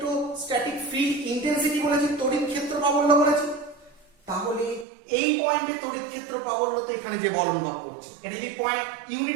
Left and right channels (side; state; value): left; drops out; at 4.9 s